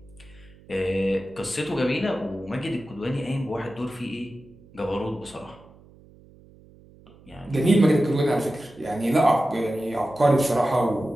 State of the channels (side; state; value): right; noise; hum, 25 dB below the sound